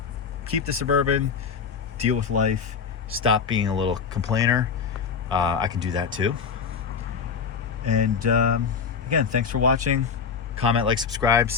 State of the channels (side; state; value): right; quieter; 6.1 dB